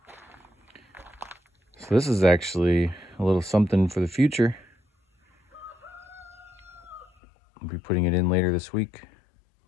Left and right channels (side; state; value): right; drops out; at 7.1 s